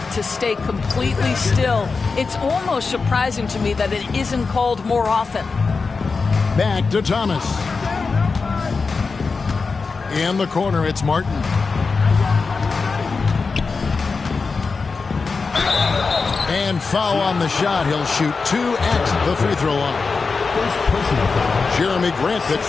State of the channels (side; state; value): right; quieter; 4.5 dB